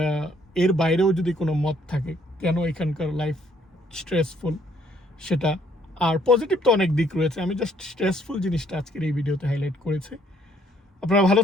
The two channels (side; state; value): both; normal; correlation 0.66